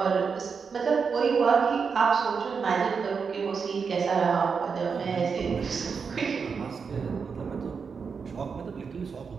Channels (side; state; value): left; quieter; 5.7 dB